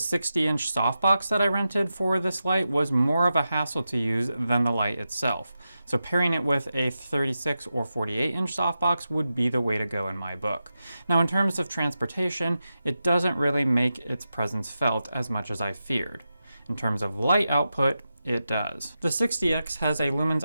softbox that I rented for this light was more of a hassle to use than the light itself. So pairing it with a 36 or 48-inch softbox would be the way to go in my book. Now, in terms of transportation, it doesn't really make its presence felt as much as I feared. In terms of light output, it does. The 60X has a lumens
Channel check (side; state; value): both; inverted; correlation -0.90